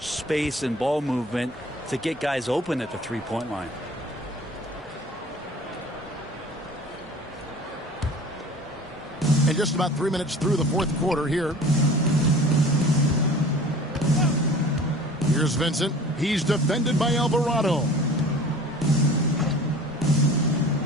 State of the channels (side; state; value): both; normal; correlation 0.44